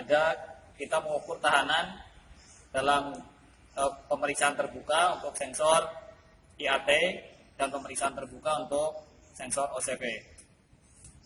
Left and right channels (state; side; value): identical; both; correlation 1.00